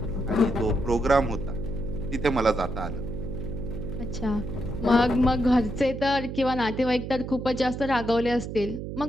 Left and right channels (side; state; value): right; noise; hum, 7 dB below the sound